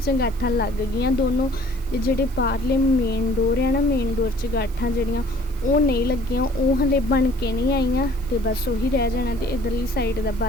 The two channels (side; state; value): right; noise; hiss, 24 dB below the sound